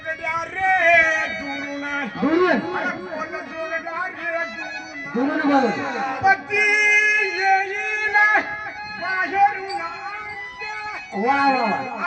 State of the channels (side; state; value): both; identical; correlation 1.00